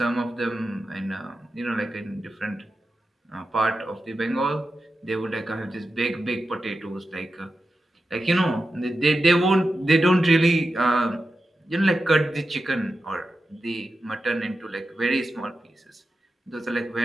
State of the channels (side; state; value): both; normal; correlation 0.91